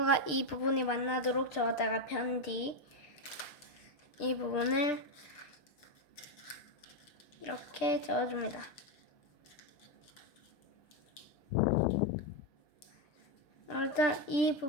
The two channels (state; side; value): late; right; 6.7 ms